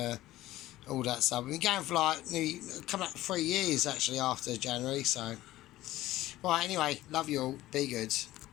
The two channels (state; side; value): quieter; right; 15.8 dB